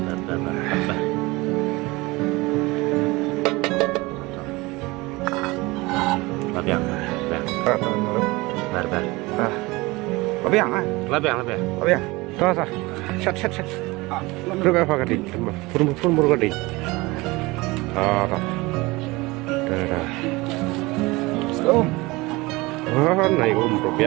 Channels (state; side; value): quieter; left; 22.5 dB